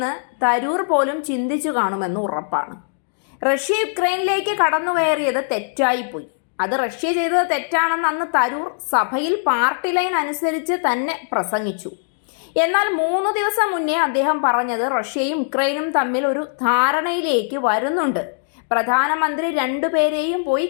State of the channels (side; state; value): right; silent; digital silence